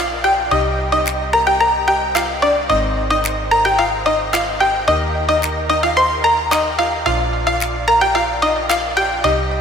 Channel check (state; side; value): normal; both; correlation 0.65